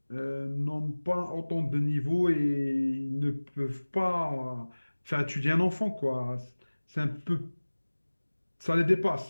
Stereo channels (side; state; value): both; inverted; correlation -1.00